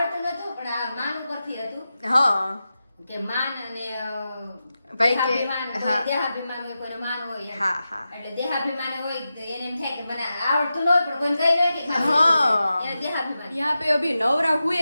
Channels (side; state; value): both; inverted; correlation -0.91